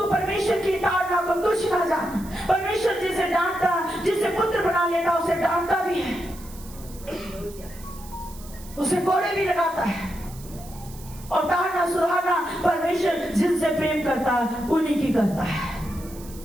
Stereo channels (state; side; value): noise; right; hiss, 19 dB below the sound